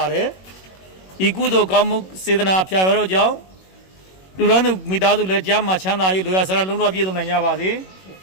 ါတယ်ဤကုသိုလ်ကောင်းမှုစေတနာဖျာရတော့ကြောင့်လူဒန်းသူမိသားစုလည်းကြားမှာချမ်းသာ၍လူရဆရာလုံးတော်ပြည့်စုံနိုင်ကြပါစေ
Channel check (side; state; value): right; late; 21 ms